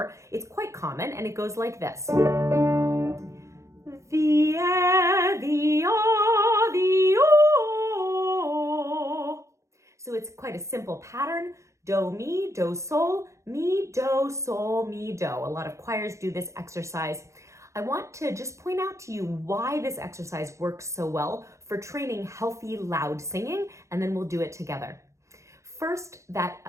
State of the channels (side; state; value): left; late; 0.14 ms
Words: It's quite common, and it goes like this. The, the, o. So it's quite a simple pattern. Do, mi, do, sol, mi, do, sol, mi, do. A lot of choirs do this exercise. I want to just point out to you why this exercise works so well for training healthy, loud singing, and then we'll do it together. First,